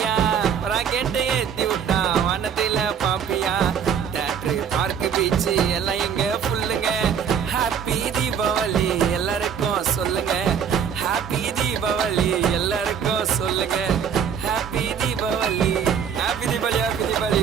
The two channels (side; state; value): left; quieter; 7.6 dB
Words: ராக்கெட்டை ஏத்தி விட்டா வானத்தில பாப்பியா. தேட்டரு பார்க்கு பீச்சு எல்லாம் இங்க ஃபுல்லுங்க. ஹாப்பி தீபாவளி எல்லாருக்கும் சொல்லுங்க. ஹாப்பி தீபாவளி எல்லாருக்கும் சொல்லுங்க. Happy Deepavali happy Deepavali happy Deepavali.